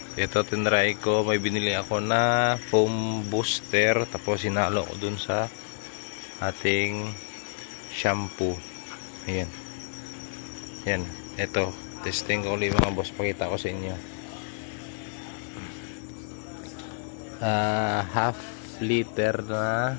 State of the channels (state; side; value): silent; right; digital silence